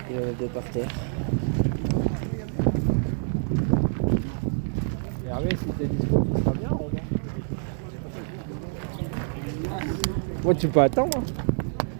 Il en a deux par terre. Hervé, si t'es dispo, ça sera bien, Romain. Moi, tu peux attendre. Hein.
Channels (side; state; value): left; silent; digital silence